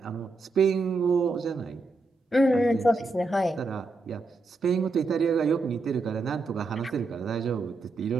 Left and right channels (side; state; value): left; quieter; 3.4 dB